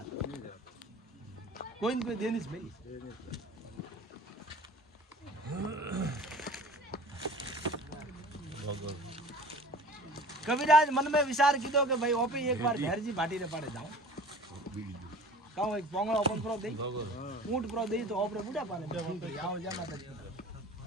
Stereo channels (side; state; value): both; normal; correlation 0.43